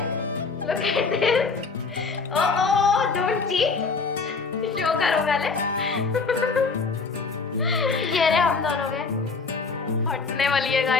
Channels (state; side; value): quieter; right; 4.5 dB